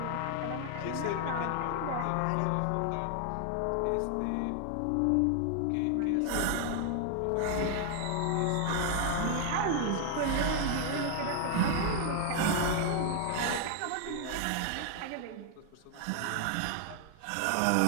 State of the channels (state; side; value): different; both; correlation 0.00